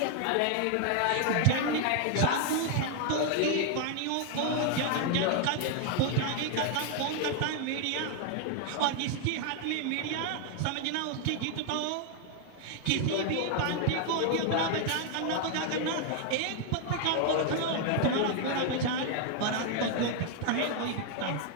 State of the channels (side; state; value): both; different; correlation 0.01